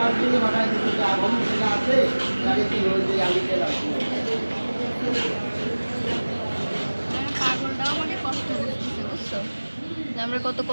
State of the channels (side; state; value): both; inverted; correlation -1.00